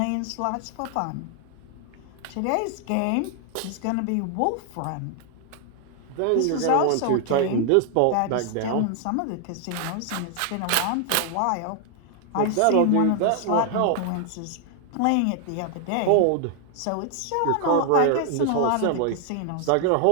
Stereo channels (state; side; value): different; both; correlation 0.00